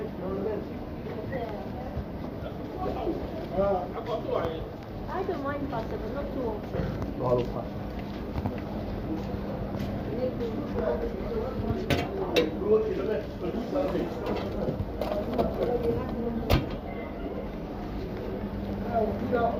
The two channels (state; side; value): identical; both; correlation 1.00